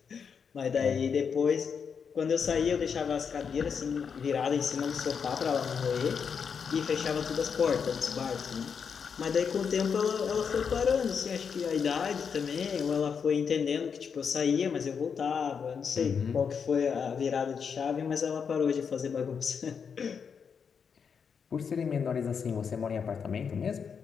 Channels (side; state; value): right; quieter; 6.5 dB